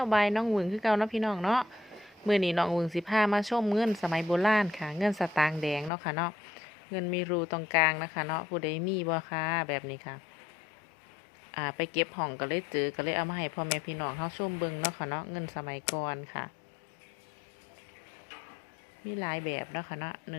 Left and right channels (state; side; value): drops out; right; at 5.9 s